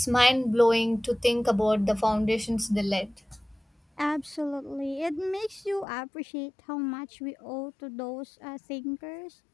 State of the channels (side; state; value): right; drops out; at 5.9 s